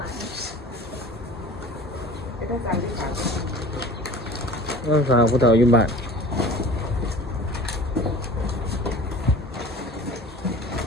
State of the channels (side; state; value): both; normal; correlation 0.42